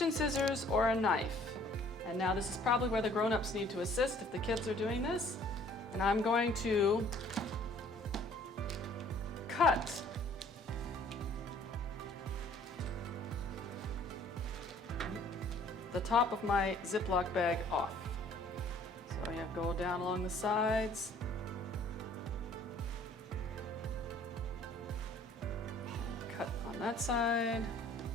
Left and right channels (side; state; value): both; normal; correlation 0.56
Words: scissors or a knife. And now this is probably where the grown-ups need to assist if the kids are doing this. And I'm going to cut the top of my Ziploc bag off. So you have to go down along the sides. And cut on that side.